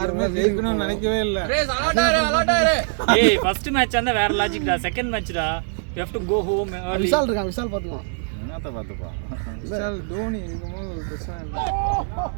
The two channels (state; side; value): silent; left; 64 dB below the other